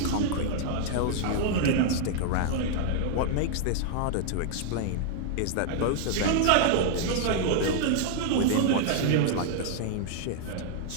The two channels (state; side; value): different; both; correlation -0.01